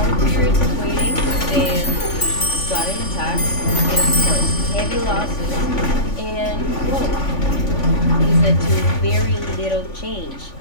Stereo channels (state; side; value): late; right; 3.5 ms